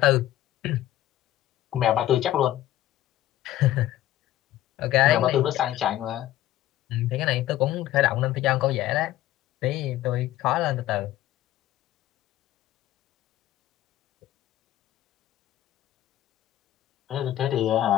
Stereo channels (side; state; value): right; quieter; 14.0 dB